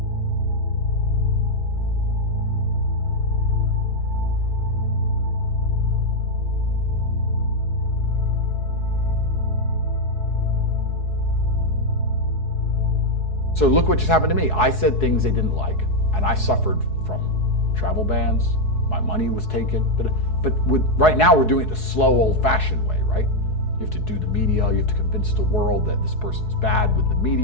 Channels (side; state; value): right; late; 4.7 ms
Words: So look what just happened to me. I said things they didn't like, and I suffered from travel bans. My money was taken. But right now we're doing it the slow, old-fashioned way, right? You have to do the media, you have to convince the world that this person's bad with the